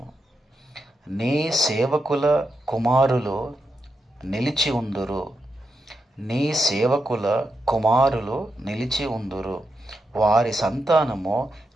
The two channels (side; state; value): both; normal; correlation 0.86